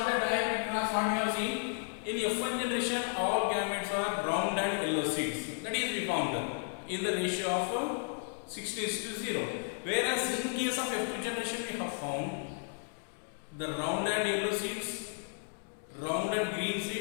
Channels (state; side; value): silent; right; 55 dB below the other